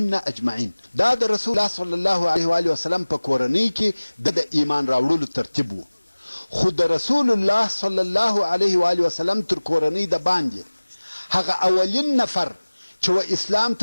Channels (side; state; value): both; inverted; correlation -1.00